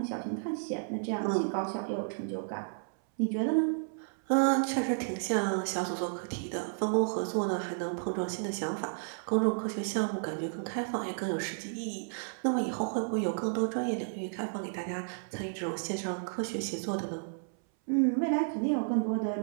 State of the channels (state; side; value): silent; left; 56 dB below the other